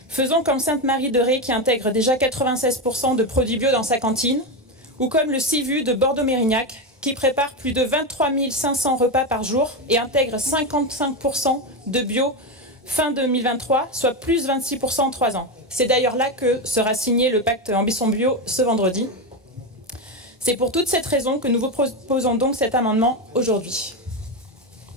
Faisons comme Sainte-Marie-de-Ré qui intègre déjà 96% de produits bio dans sa cantine, ou comme le CIVU de Bordeaux-Mérignac qui prépare plus de 23 500 repas par jour et intègre 55% de bio fin 2023, soit plus 26% en 3 ans. C'est d'ailleurs là que sera signé le pacte Ambition Bio ce vendredi. C'est pour toutes cette raison que nous vous proposons donc cet amendement aujourd'hui.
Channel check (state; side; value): normal; both; correlation 0.12